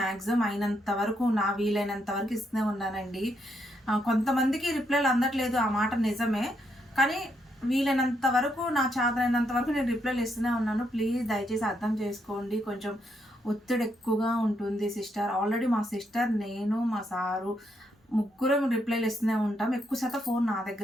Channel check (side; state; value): both; normal; correlation 0.77